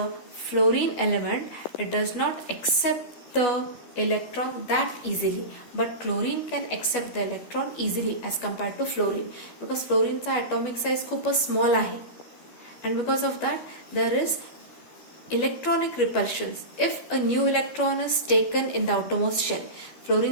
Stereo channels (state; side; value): late; right; 12 ms